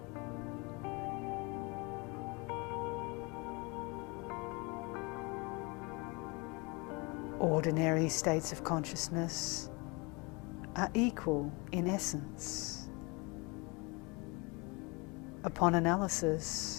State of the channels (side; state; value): right; quieter; 28.2 dB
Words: ordinary states of consciousness are equal in essence. Upon